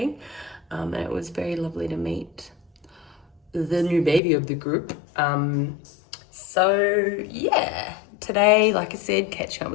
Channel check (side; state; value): right; drops out; at 4.2 s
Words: And it was very lovely to meet the new baby of the group. So yeah, today, like I said, catching up